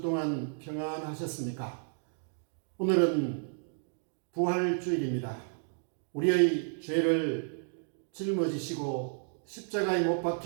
동안 평안하셨습니까? 오늘은 부활주일입니다. 우리의 죄를 짊어지시고 십자가에 못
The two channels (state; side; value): silent; left; digital silence